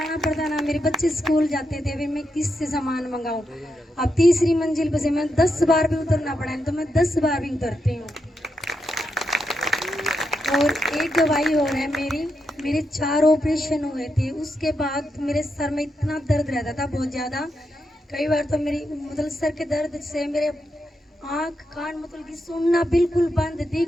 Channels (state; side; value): normal; both; correlation 0.84